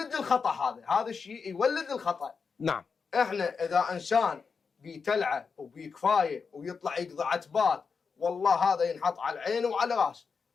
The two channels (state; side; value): quieter; right; 5.4 dB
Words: الخطا. هذا الشيء يولد الخطا. نعم. احنا اذا انسان بيتلعه وبيكفايه ويطلع يقضي عتبات، والله هذا ينحط على العين وعلى راس.